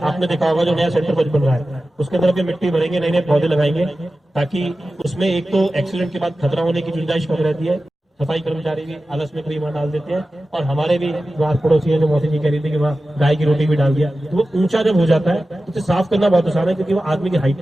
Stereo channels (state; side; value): normal; both; correlation 0.94